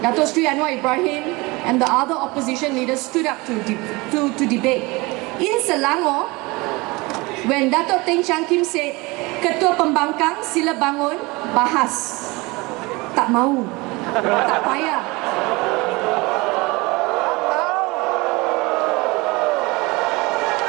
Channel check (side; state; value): left; quieter; 24.1 dB